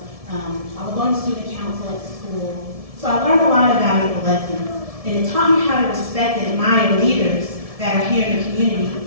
I was on the student council at school. So I learned a lot of valuable lessons. And it taught me how to respect and admire leaders that are here in the community.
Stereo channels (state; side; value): late; left; 1.7 ms